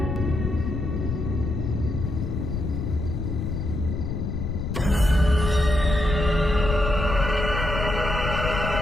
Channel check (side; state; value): left; noise; rumble, 3 dB below the sound